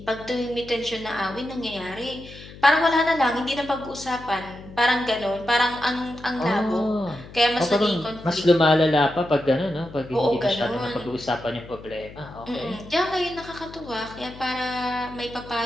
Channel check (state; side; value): noise; left; hum, 17 dB below the sound